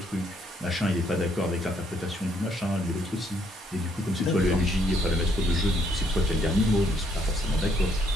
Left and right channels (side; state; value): both; normal; correlation 0.70